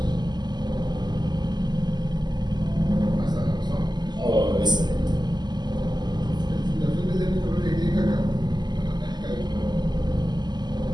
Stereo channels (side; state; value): left; late; 0.21 ms